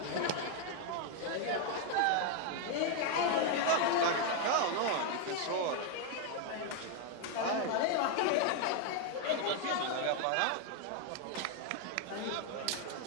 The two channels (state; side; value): different; both; correlation 0.01